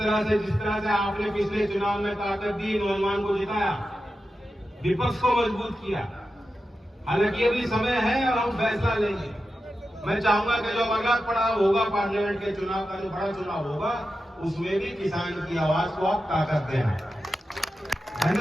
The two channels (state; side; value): normal; both; correlation 0.91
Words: से जिस तरह से आपने पिछले चुनाव में ताकत दी, नौजवान को जिताया, विपक्ष को मजबूत किया, हालांकि अभी समय है और हम फैसला लेंगे। मैं चाहूंगा कि जो अगला पड़ाव होगा, पार्लियामेंट के चुनाव का जो बड़ा चुनाव होगा, उसमें भी किसान की आवाज को आप ताकत देना।